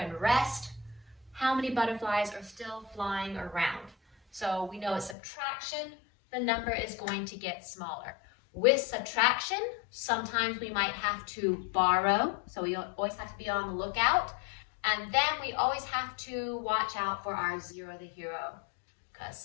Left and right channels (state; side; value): drops out; right; at 5.2 s